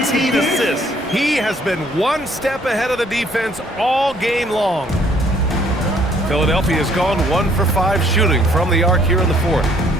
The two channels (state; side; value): normal; both; correlation 0.63